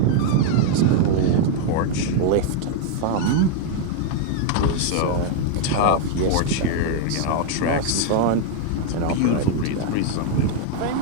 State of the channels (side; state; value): both; different; correlation 0.00